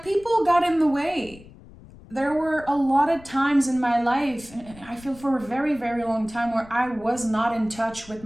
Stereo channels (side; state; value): left; noise; rumble, 20 dB below the sound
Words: people got in the way. There were a lot of times in my life, and I feel for a very, very long time, where I was not in touch with